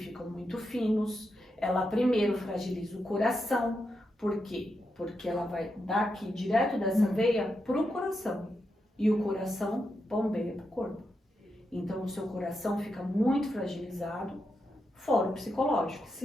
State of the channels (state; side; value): normal; both; correlation 0.85